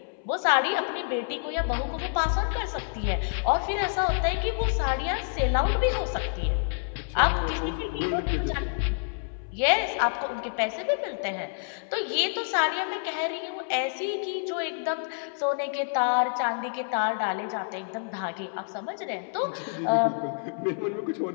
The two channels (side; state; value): right; silent; 59 dB below the other